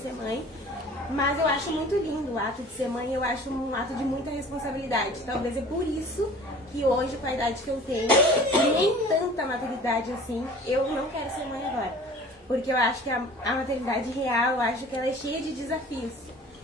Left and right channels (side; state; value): both; normal; correlation 0.45